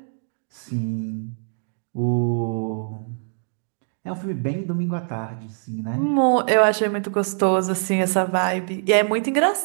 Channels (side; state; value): left; silent; 63 dB below the other